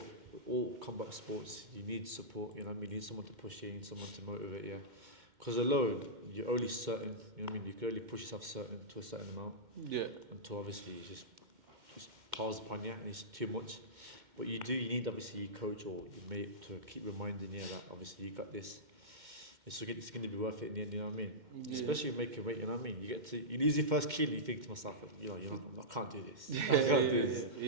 all combat sports, you need support. You know what I mean? You need someone to push you, you need someone to motivate you. Because alone, you're only certain. You know what I mean? You can only push yourself to a certain amount. Yeah. Until obviously it just piles upon you and it's too much. But you need obviously your coach or your mate to keep reminding you that obviously you got this. It's going to be worth it in the end, you know what I mean? Yeah. Especially making weight, you know what I mean? You lose your first kilo and you think to myself, I can't do this. I can't do this.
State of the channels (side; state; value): left; late; 2.1 ms